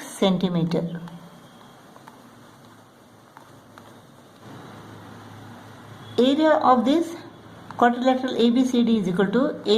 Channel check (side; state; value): both; identical; correlation 1.00